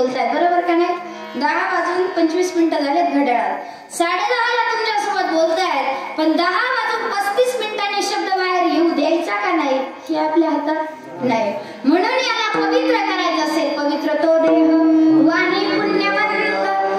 बरोबर का नाही? 10:25 झालेत घड्याळात. 10:30ला तुमच्यासोबत बोलतायत, पण 10:35 शब्द बाहेर येऊ द्यायचा का नाही हे आपल्या हातात नाही. म्हणून याला पवित्र करायचं असेल, पवित्र तो देह वाणी पुण्यवंत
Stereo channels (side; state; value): both; identical; correlation 1.00